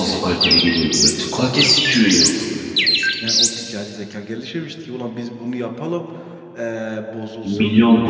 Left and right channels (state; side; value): identical; both; correlation 1.00